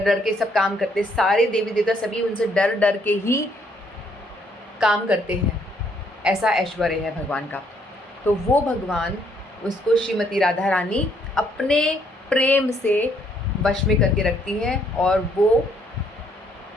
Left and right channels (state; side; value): normal; both; correlation 0.69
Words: डर के सब काम करते हैं, सारे देवी देवता सभी उनसे डर डर के ही काम करते हैं। ऐसा ऐश्वर्य है भगवान का। तो वो भगवान उसको श्रीमती राधा रानी अपने प्रेम से वश में करके रखती हैं, और वो